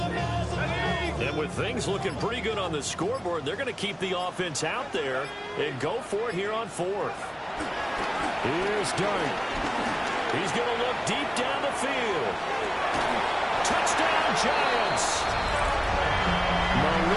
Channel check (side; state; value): both; identical; correlation 1.00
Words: And with things looking pretty good on the scoreboard, they're going to keep the offense out there and go for it here on 4th. Here's Dart. He's going to look deep down the field. Touchdown, Giants.